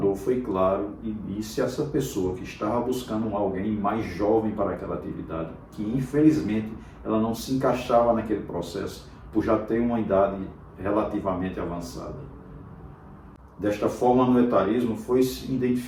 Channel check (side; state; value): both; identical; correlation 1.00